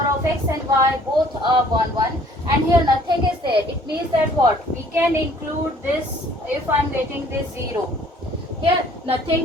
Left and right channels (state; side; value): normal; both; correlation 0.57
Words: of x and y both are 1. And here nothing is there. It means that what? We can include this if I am getting this 0. Here